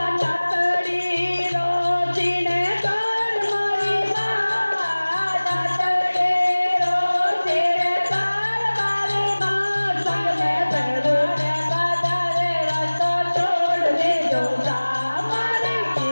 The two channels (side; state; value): both; inverted; correlation -1.00